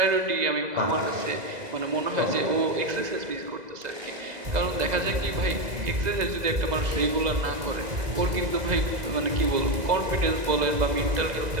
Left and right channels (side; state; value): left; late; 2.0 ms